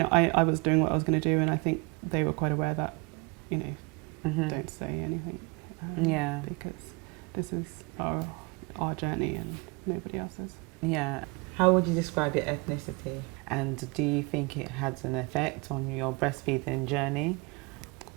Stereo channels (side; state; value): left; quieter; 29.0 dB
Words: I was doing what I was going to do, and I think they were quite aware that, you know, don't say anything. Because this is our journey and nobody else's. Yeah. How would you describe your ethnicity? And do you think it has an effect on your breastfeeding journey?